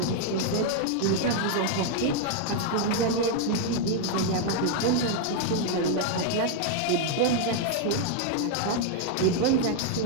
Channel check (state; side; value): different; both; correlation 0.00